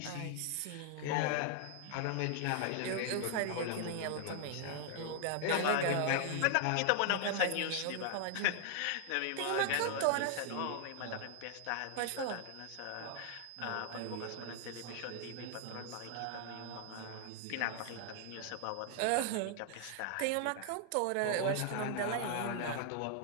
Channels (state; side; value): different; both; correlation 0.00